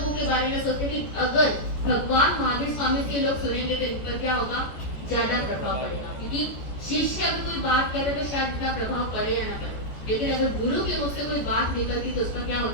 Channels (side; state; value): right; late; 14 ms